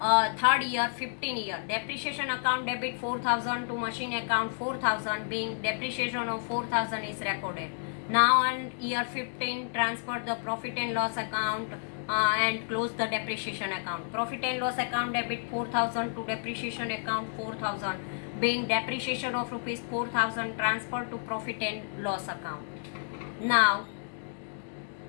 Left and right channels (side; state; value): right; silent; digital silence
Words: year 15 year, depreciation account debit 4,000 to machine account 4,000, being depreciation of 4,000 is recorded. Now on year 15, transfer the profit and loss account and close the depreciation account. Profit and loss account debit 4,000 to depreciation account 4,000, being depreciation of rupees 4,000 transferred to profit and loss account. Now